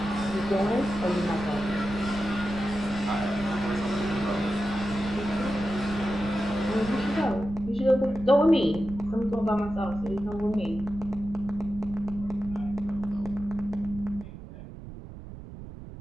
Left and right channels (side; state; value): right; noise; rumble, 13 dB below the sound